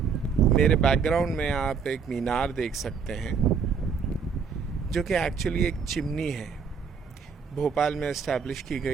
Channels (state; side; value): quieter; left; 6.0 dB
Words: मेरे बैकग्राउंड में आप एक मीनार देख सकते हैं जो कि एक्चुअली एक चिमनी है। भोपाल में इस्टेब्लिश की